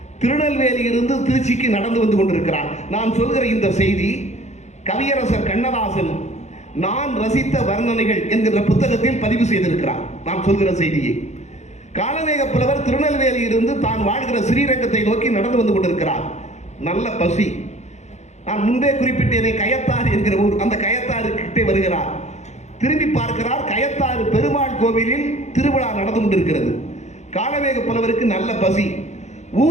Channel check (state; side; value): late; right; 0.33 ms